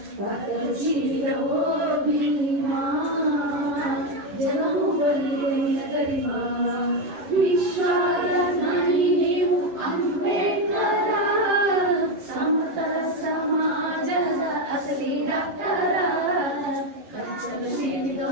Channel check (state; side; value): late; left; 11 ms